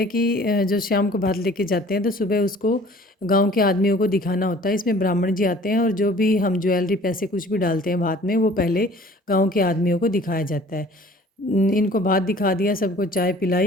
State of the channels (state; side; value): normal; both; correlation 0.50